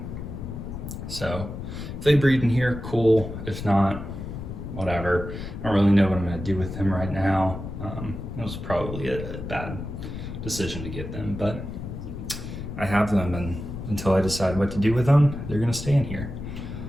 So if they breed in here, cool. If not, whatever. I don't really know what I'm gonna do with them right now. It was probably a bad decision to get them, but I have them, and until I decide what to do with them, they're gonna stay in here.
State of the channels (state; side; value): noise; left; rumble, 8 dB below the sound